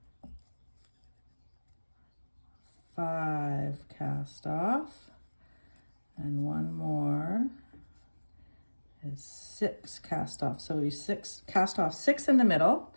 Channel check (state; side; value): inverted; both; correlation -1.00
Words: 5 cast off, and 1 more is 6 cast off. So we cast off 6 in the middle.